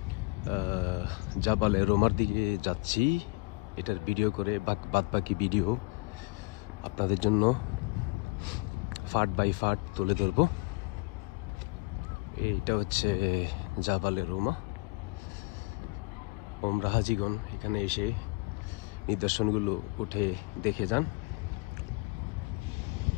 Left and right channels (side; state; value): right; quieter; 25.9 dB